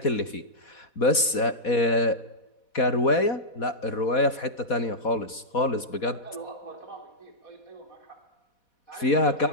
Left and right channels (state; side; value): late; right; 4.1 ms